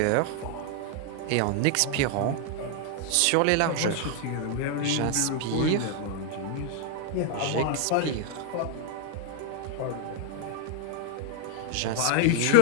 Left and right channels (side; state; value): both; different; correlation 0.00